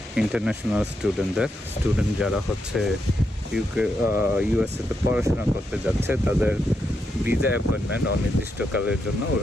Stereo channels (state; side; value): normal; both; correlation 0.82